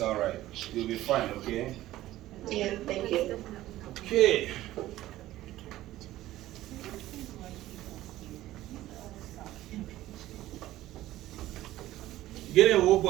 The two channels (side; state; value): left; quieter; 15.2 dB